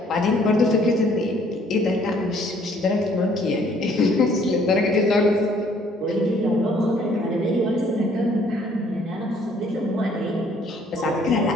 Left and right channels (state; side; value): normal; both; correlation 0.61